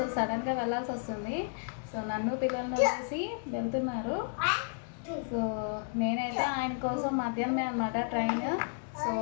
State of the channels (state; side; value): silent; right; digital silence